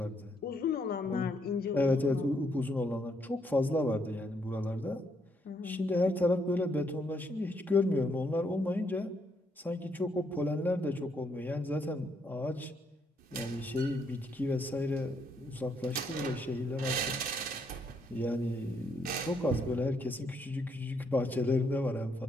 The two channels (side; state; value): both; normal; correlation 0.73